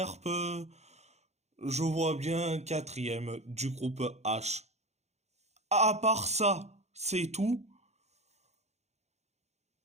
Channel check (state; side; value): late; left; 0.32 ms